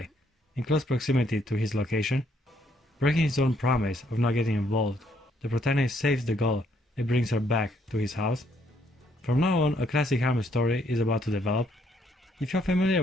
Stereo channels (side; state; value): both; normal; correlation 0.70